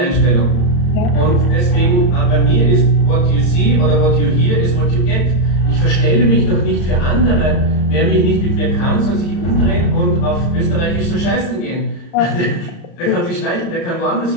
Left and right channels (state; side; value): late; right; 34 ms